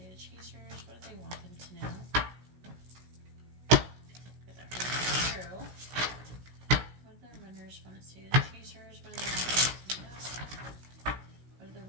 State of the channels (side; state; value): left; late; 16 ms